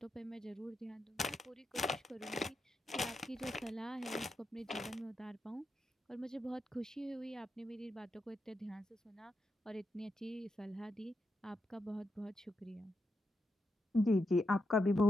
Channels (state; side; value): normal; both; correlation 0.85